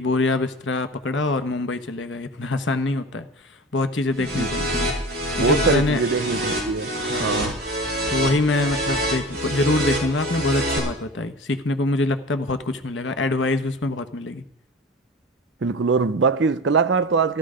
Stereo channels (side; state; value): both; normal; correlation 0.34